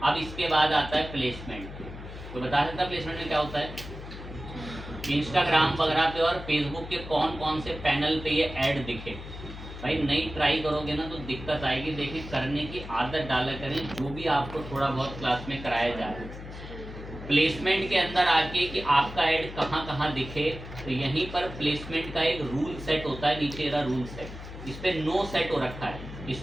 अब इसके बाद आता है प्लेसमेंट। तो बता सकता प्लेसमेंट में क्या होता है। इंस्टाग्राम वगैरह पे और फेसबुक के कौन कौन से पैनल पे ये ऐड दिखे। भाई नई ट्राई करोगे ना तो दिक्कत आएगी। देखिए, करने की आदत डाला करें जो भी आपको थोड़ा बहुत क्लास में कराया जा रहा है। प्लेसमेंट के अंदर आके कि आपका ऐड कहाँ कहाँ दिखे, तो यहीं पर प्लेसमेंट का एक रूल सेट होता है, नीचे रहा रूल सेट, इस पर नो सेट हो रखा है।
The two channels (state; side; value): noise; left; hum, 12 dB below the sound